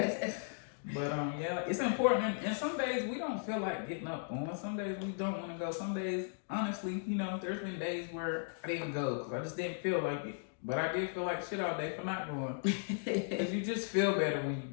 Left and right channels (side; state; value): right; silent; digital silence